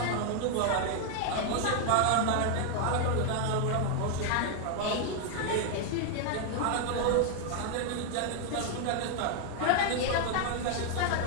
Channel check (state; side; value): different; both; correlation 0.00